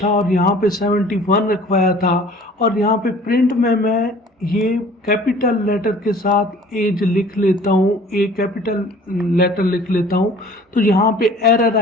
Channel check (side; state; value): both; normal; correlation 0.49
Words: और यहाँ पे 71 रखवाया था, और यहाँ पे प्रिंट में मैं ये कैपिटल लेटर के साथ एज लिख लेता हूँ, ए कैपिटल लेटर लिख लेता हूँ, तो यहाँ पे एरर